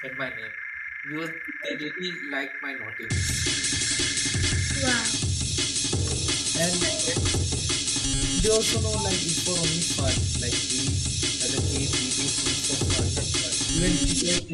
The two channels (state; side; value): identical; both; correlation 1.00